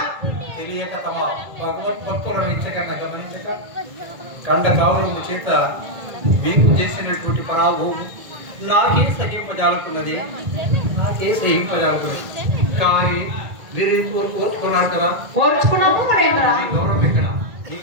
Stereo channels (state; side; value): late; left; 1.9 ms